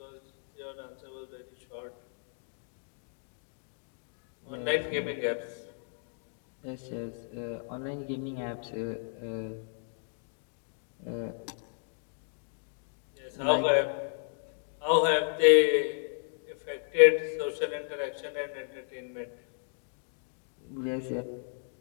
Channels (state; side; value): silent; right; digital silence